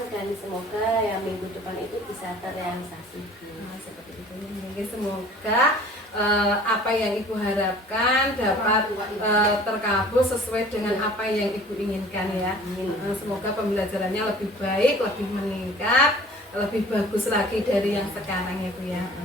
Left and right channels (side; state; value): both; normal; correlation 0.48